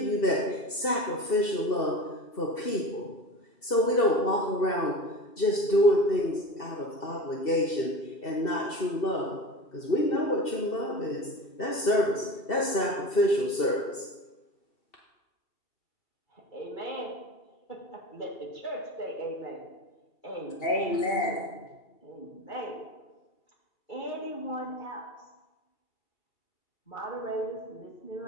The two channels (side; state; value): right; late; 2.7 ms